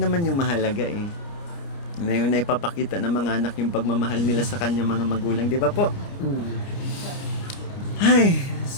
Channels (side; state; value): right; late; 29 ms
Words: naman yung mahalaga eh. Na yung naipapakita ng mga anak yung pagmamahal nila sa kanyang mga magulang, di ba po? Ay,